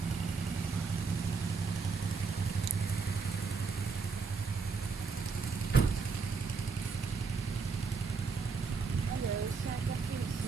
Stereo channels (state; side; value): quieter; left; 4.9 dB